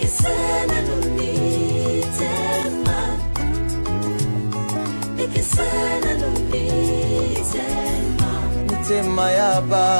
nulitema Nikisana nulitema Mitema ya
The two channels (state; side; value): inverted; both; correlation -1.00